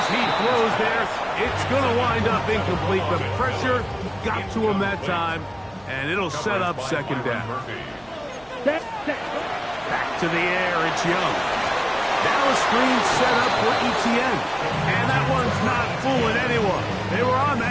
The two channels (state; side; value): noise; left; hum, 29 dB below the sound